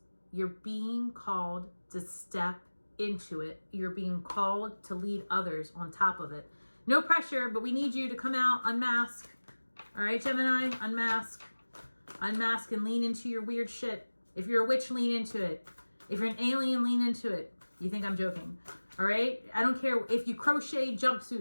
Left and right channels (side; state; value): both; inverted; correlation -1.00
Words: You're being called to step into it. You're being called to lead others on top of it. No pressure, but we need you to come out, unmask. All right, Gemini, unmask. Unmask and lean into your weird shit. If you're a witch, lean into it. If you're an alien, lean into it. You think I'm joking. All right? I don't care if you crochet